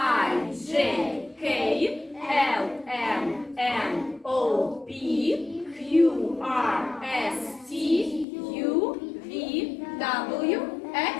J, K, L, M, N, O, P, Q, R, S, T, U, V, W,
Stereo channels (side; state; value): right; drops out; at 8.2 s